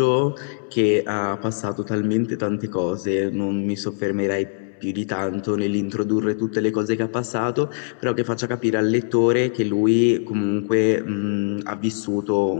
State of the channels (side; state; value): right; silent; digital silence